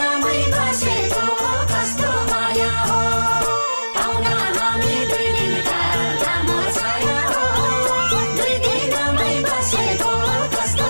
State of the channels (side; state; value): both; inverted; correlation -1.00